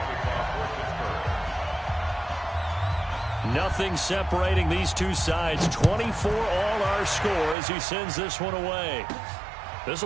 Nothing separating these two sides. 24 all our score as he sends this one away. This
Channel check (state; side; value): drops out; left; at 7.6 s